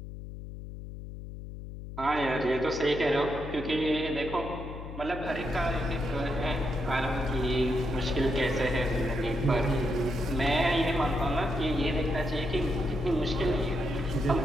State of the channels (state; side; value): noise; left; hum, 10 dB below the sound